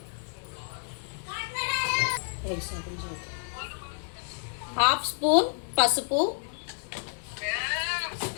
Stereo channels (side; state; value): right; silent; 58 dB below the other